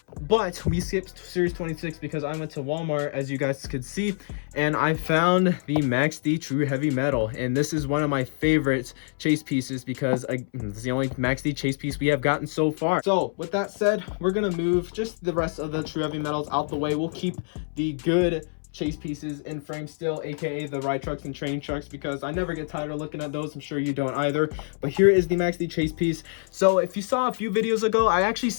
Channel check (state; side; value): silent; right; 61 dB below the other